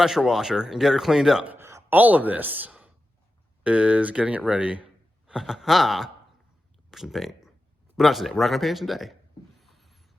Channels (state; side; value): normal; both; correlation 0.92